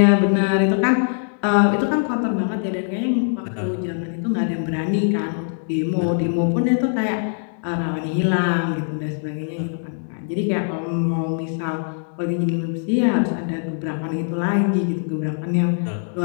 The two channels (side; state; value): right; silent; digital silence